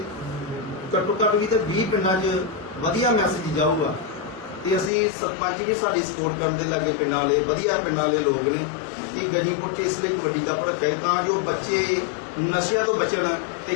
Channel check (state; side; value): drops out; right; at 4.9 s